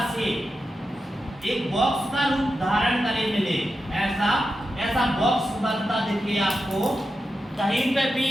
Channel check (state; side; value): normal; both; correlation 0.89